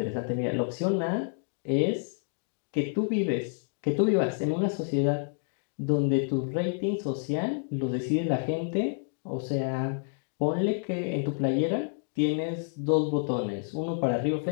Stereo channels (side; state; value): right; silent; 59 dB below the other